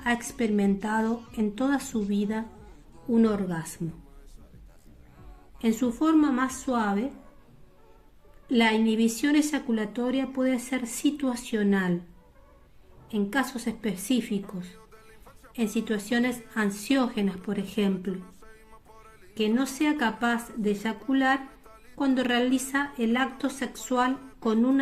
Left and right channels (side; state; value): both; identical; correlation 1.00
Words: ha experimentado en toda su vida un orgasmo. En su forma más suave, la inhibición eyaculatoria puede ser situacional, en casos específicos, en situaciones ansiógenas, por ejemplo, que no sea capaz de eyacular cuando realiza el acto sexual con